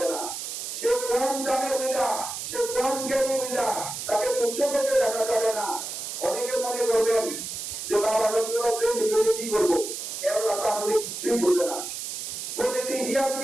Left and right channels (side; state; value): right; noise; hiss, 6 dB below the sound